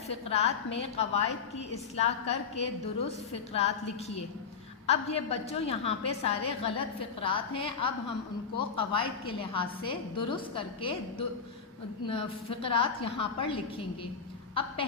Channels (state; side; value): quieter; right; 6.0 dB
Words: فقرات میں قواعد کی اصلاح کر کے درست فقرات لکھیے۔ اب یہ بچوں یہاں پہ سارے غلط فقرات ہیں، اب ہم ان کو قواعد کے لحاظ سے درست کر کے فقرات یہاں پر لکھیں گے۔ اب